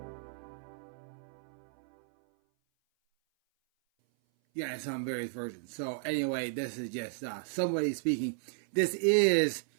Yeah, in some various versions. So anyway, this is just somebody speaking. This is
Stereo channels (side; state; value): left; silent; 55 dB below the other